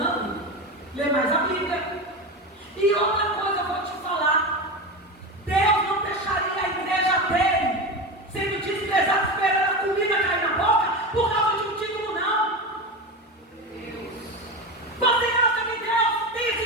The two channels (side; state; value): both; normal; correlation 0.21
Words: ler mais a Bíblia. E outra coisa eu vou te falar, Deus não deixaria a igreja dele sendo desprezado, esperando a comida cair na boca por causa de um título, não. Você acha que Deus tem esse